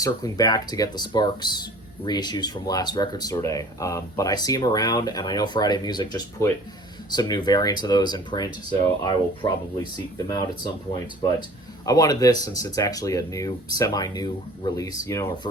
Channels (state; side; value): normal; both; correlation 0.47